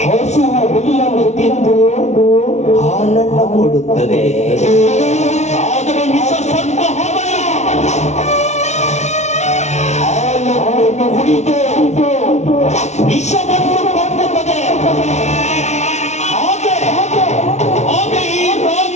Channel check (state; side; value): late; right; 0.32 ms